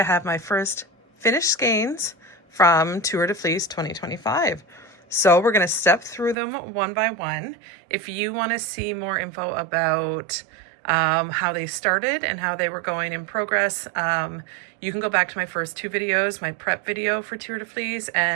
have my first finished skeins from Tour de Fleece 2025. So we're going to step through them one by one. If you want to see more info about how they started and how they were going in progress, you can go back to my first two videos, my prep video for Tour de Fleece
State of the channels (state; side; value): drops out; left; at 6.4 s